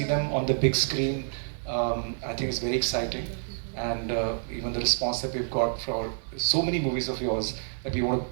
them on the big screen, I think is very exciting. And even the response that we've got for so many movies of yours that we want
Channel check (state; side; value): silent; left; 55 dB below the other